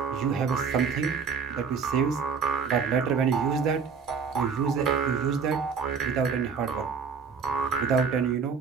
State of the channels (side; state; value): left; quieter; 5.9 dB